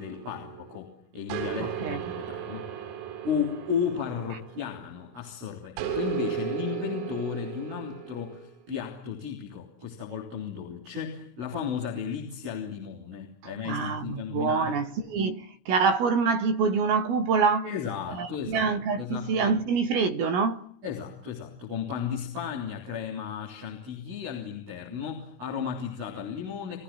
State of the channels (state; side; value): late; left; 17 ms